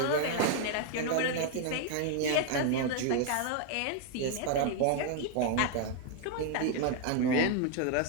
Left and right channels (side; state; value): both; different; correlation 0.01